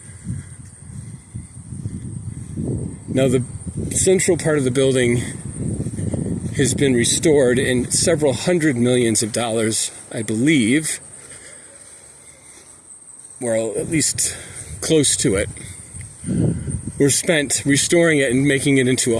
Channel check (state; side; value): identical; both; correlation 1.00